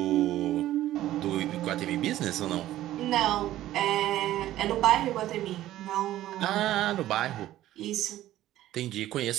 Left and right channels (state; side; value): quieter; left; 14.1 dB